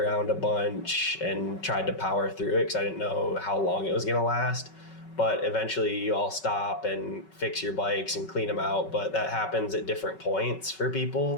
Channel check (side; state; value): right; late; 5.3 ms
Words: a bunch and tried to power through it because I didn't know how long it was going to last. But eventually you all stop and fix your bikes and clean them out. But that happens at different points for